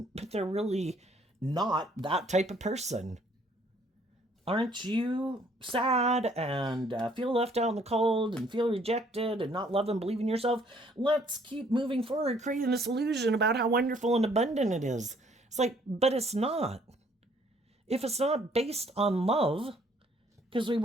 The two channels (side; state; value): both; normal; correlation 0.63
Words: but they're really not that type of person. Aren't you sad and feel left out in the cold and feel rejected and not love and believe in yourself? Let's keep moving forward, creating this illusion about how wonderful and abundant it is. It's like, but it's not. If it's not based on love, because we